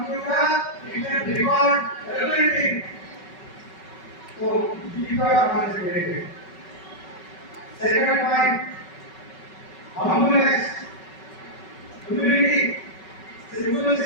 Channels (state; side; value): late; right; 5.3 ms